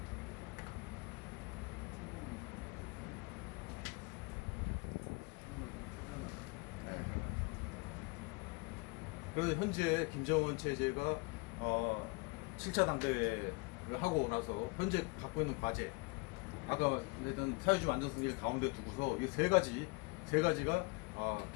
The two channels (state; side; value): quieter; right; 28.9 dB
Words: 그래서 현재 김정은 체제가 7차 당대회 하고 나서 현재 갖고 있는 과제, 아까 말했던 사회주의 완전승리를 가운데 두고서 이 세 가지가